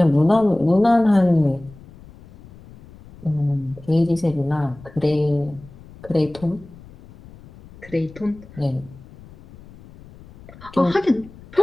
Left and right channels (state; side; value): noise; left; rumble, 21 dB below the sound